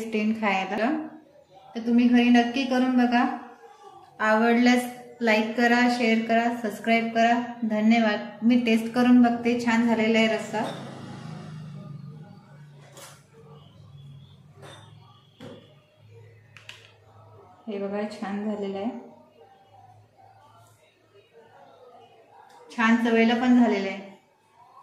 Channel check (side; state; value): both; identical; correlation 1.00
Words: येईल खायला। तर तुम्ही घरी नक्की करून बघा। आवडल्यास लाईक करा, शेअर करा, सबस्क्राईब करा। धन्यवाद। मी टेस्ट करून बघते। छान झालेला आहे रस्सा। हे बघा छान झालेलं आहे। छान चवेला पण झालेलं आहे।